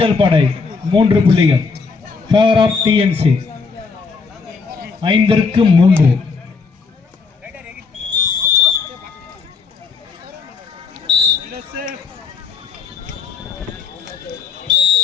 படை 3 புள்ளிகள். ஃபேவர் ஆஃப் டிஎன்சி 5க்கு 3.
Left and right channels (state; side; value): quieter; right; 5.0 dB